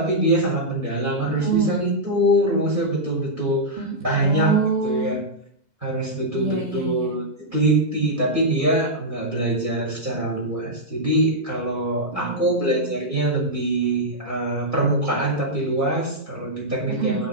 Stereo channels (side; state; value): left; late; 2.0 ms